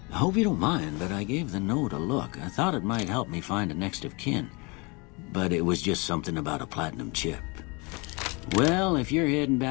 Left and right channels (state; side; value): quieter; right; 28.7 dB